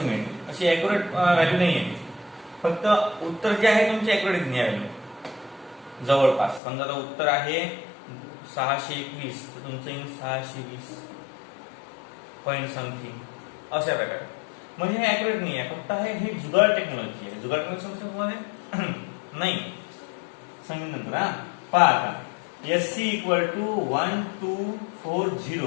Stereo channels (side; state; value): right; drops out; at 6.6 s